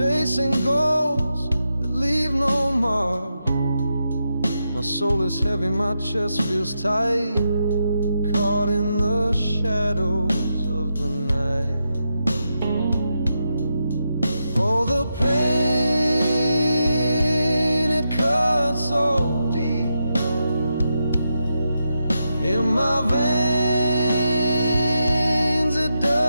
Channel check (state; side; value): inverted; both; correlation -0.86